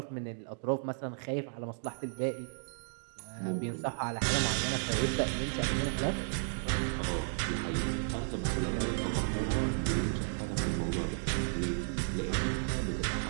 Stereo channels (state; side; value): silent; left; digital silence